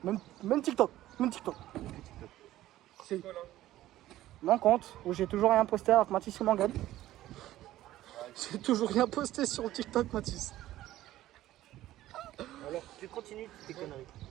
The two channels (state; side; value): quieter; left; 14.6 dB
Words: même TikTok. C'est mon compte où j'ai toujours rien posté avec Mathis et Morgan. J'ai toujours rien posté sur TikTok, Mathis. Alors, tu continues tes conneries.